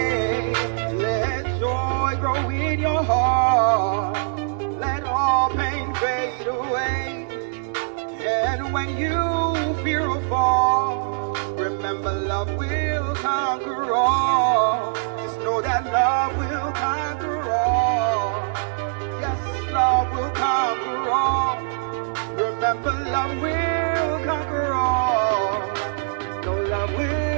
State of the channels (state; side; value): silent; left; digital silence